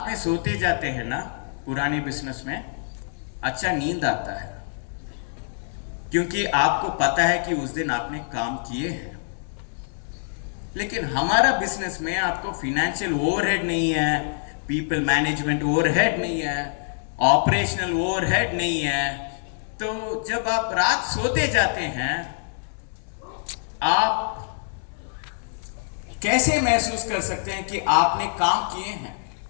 में सोते जाते हैं ना पुराने बिजनेस में, अच्छा नींद आता है, क्योंकि आपको पता है कि उस दिन आपने काम किए हैं। लेकिन हमारा बिजनेस में आपको फाइनेंशियल ओवरहेड नहीं है, पीपल मैनेजमेंट ओवरहेड नहीं है, ऑपरेशनल ओवरहेड नहीं है। तो जब आप रात सोते जाते हैं, आप कैसे महसूस कर सकते हैं कि आपने काम किए हैं?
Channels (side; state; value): right; silent; digital silence